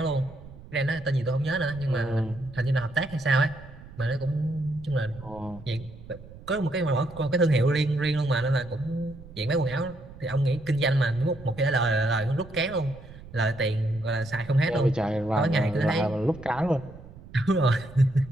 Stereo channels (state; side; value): noise; right; rumble, 18 dB below the sound